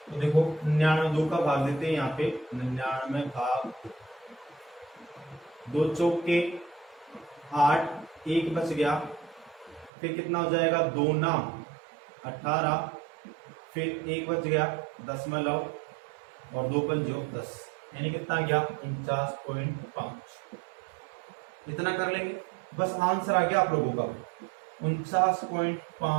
तो देखो 99 2 का भाग देते हैं, यहाँ पे 99 भाग 2 चौके 8, 1 बच गया, फिर कितना हो जाएगा 2 नाम 18, फिर 1 बच गया दशमलव और 2 पंजो 10, यानी कितना गया 49.5। इतना कर लेंगे, बस आंसर आ गया आप लोगों का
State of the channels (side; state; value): left; drops out; at 9.9 s